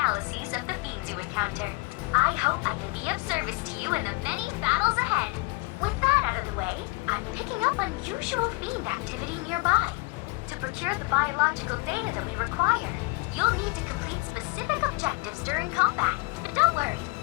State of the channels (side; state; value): right; quieter; 25.5 dB